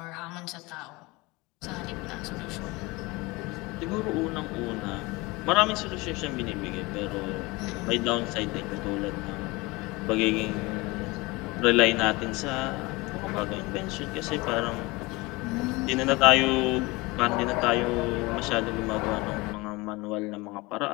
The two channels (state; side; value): quieter; right; 23.5 dB